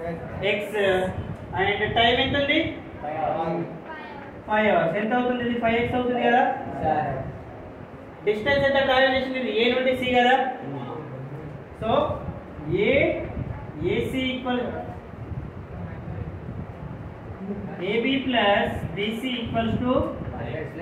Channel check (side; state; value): both; identical; correlation 1.00